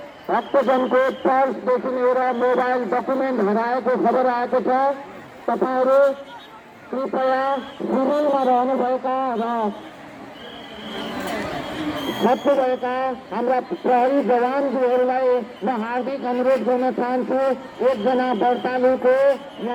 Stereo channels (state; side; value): identical; both; correlation 1.00